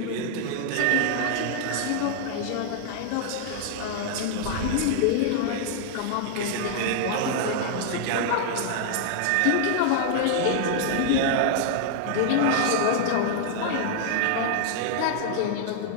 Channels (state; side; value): different; both; correlation -0.01